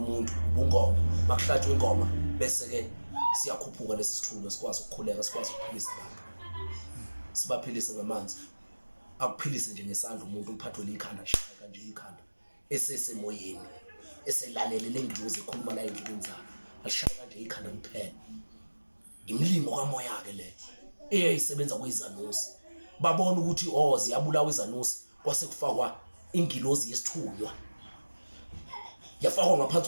ubungoma bakuhlatshwe ingoma bese ke siyakhuphuka lesi sithunywa sikwazi ukukhuleka sikwazi ukuphilisa abantu sibaphilise ngamanzi akuphilise nje ngesandla umuntu uphathwe likhanda shaya kanje ikhanda esesemoyeni eselalele lengilozi ekhuluma la endleleni zakhe ashaya kanje ikhanda kuphela imlingo kamoya ke le eyayisebenza kwezanusi babona ukuthi ziyabulawa izanusi kwase kufakwa ingilozi yesithunywa yafakwa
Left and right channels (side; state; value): both; inverted; correlation -1.00